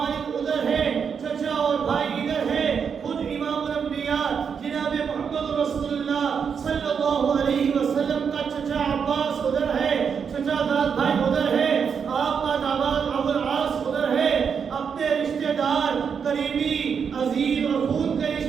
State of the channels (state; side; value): quieter; left; 6.6 dB